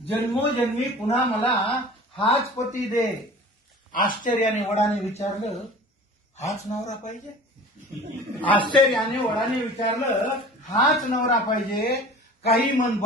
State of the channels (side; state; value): both; normal; correlation 0.41